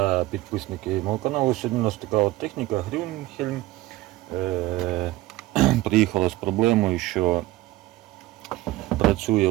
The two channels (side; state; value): left; quieter; 17.6 dB